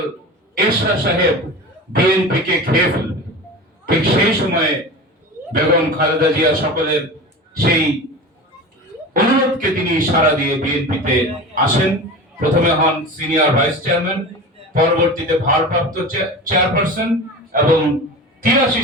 এরশাদ সাহেব বিএনপিকে খেয়ে ফেলবে। ঠিক সেই সময়ে বেগম খালেদা জিয়া সকলের সেই অনুরোধকে তিনি সাড়া দিয়ে বিএনপিতে আসেন। প্রথমে হন সিনিয়র ভাইস চেয়ারম্যান, পরবর্তীতে ভারপ্রাপ্ত চেয়ারপারসন এবং 83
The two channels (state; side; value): normal; both; correlation 0.31